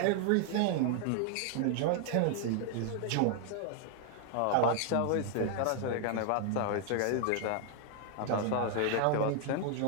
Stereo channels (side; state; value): both; different; correlation 0.00